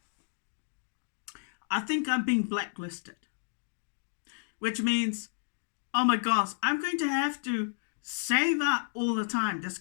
I think I'm being blacklisted, which means, oh my gosh, I'm going to have to save up all the time. That's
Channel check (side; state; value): right; silent; digital silence